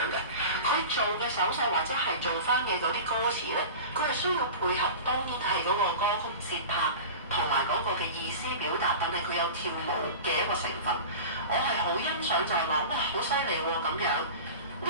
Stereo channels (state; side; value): inverted; both; correlation -0.33